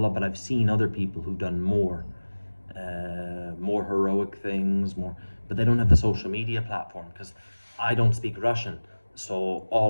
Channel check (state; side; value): inverted; both; correlation -1.00